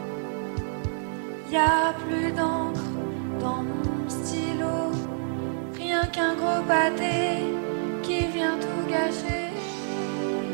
Y a plus d'encre dans mon stylo, rien qu'un gros pâté qui vient tout gâcher.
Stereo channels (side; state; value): left; silent; digital silence